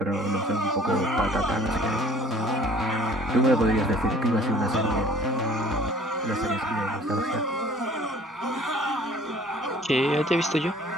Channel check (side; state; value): both; normal; correlation 0.51